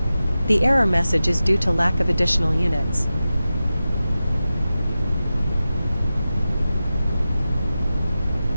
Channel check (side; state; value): both; inverted; correlation -0.93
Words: The error message is due to lack of additional units.